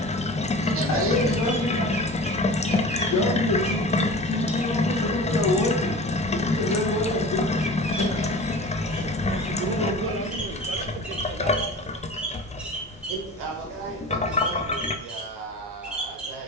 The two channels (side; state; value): both; normal; correlation 0.37